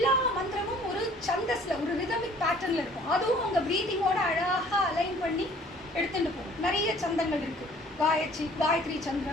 மந்திரமும் ஒரு சந்தஸில், ஒரு ரிதமிக் பேட்டர்னில் இருக்கும். அதுவும் உங்கள் ப்ரீதிங்கோட அழகாக அலைன் பண்ணி எடுத்துகிட்டு போகும். நிறைய சந்தங்கள் இருக்குது. காயத்ரி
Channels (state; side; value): normal; both; correlation 0.54